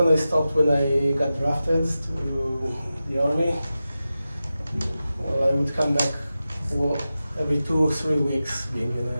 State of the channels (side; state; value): both; inverted; correlation -0.93